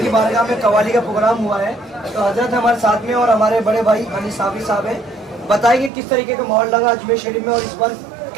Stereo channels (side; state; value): left; drops out; at 5.9 s